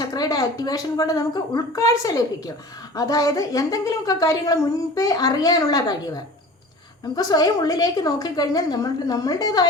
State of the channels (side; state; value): both; normal; correlation 0.41